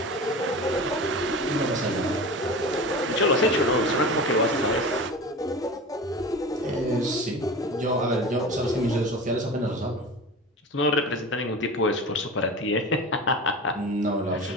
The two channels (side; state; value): both; normal; correlation 0.32